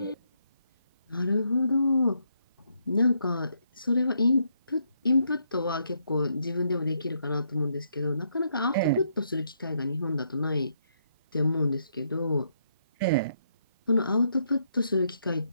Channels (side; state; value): both; inverted; correlation -0.76